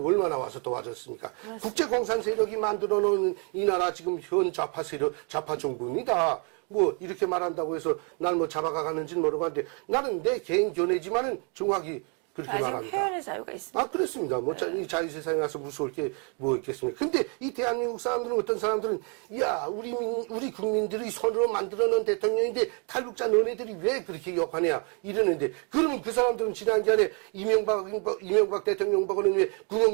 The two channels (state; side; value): quieter; left; 36.4 dB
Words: 와서 도와줬습니까? 국제 공산 세력이 만들어 놓은 이 나라 지금 현 좌파 세력, 좌파 정부입니다. 이렇게 말한다고 해서 날 잡아가는지는 모르겠는데 나는 내 개인 견해지만은 정확히 그렇게 아직 말합니다. 표현의 자유가 있습니다. 아, 그렇습니다. 이 자유세상에 와서 무서울 게 뭐 있겠습니까? 근데 이 대한민국 사람들은 어떤 사람들은, 야, 우리 국민들이 손으로 만들어 놓은 대통령인데 탈북자 너네들이 왜 그렇게 욕하냐? 이러는데, 그러면 그 사람들은 지난번에 이명박 대통령 보고는 왜